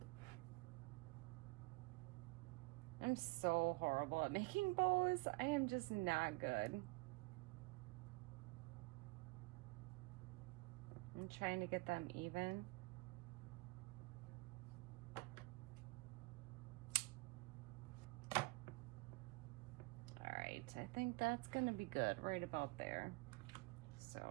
I'm so horrible at making bows. I am just not good. I'm trying to get them even. I think that's gonna be good right about there. So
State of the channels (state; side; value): quieter; left; 25.5 dB